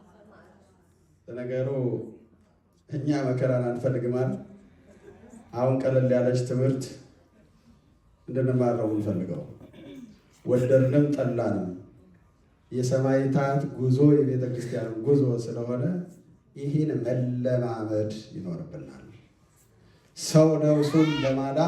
ለነገሩ እኛ መከራን አንፈልግም አይደል? አሁን ቀለል ያለች ትምህርት እንድንማር ነው የምንፈልገው። ወደድንም ጠላንም የሰማዕታት ጉዞ የቤተ ክርስቲያን ጉዞ ስለሆነ ይህን መለማመድ ይኖርብናል። ሰው ነፍሱን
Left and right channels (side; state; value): both; identical; correlation 1.00